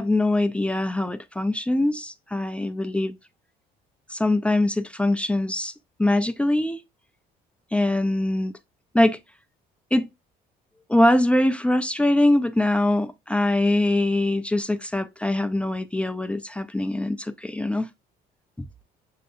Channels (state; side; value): normal; both; correlation 0.95